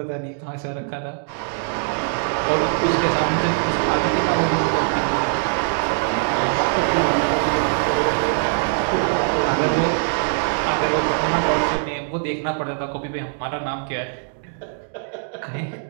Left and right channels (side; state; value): left; silent; digital silence